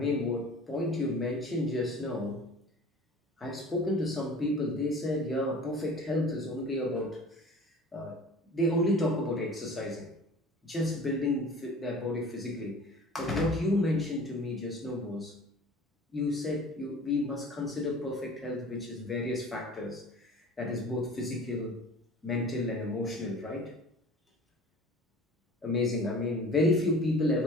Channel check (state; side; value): normal; both; correlation 0.43